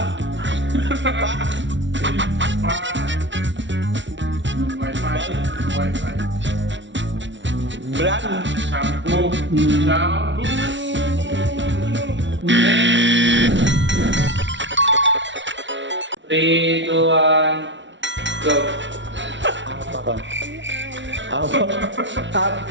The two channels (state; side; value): late; left; 0.54 ms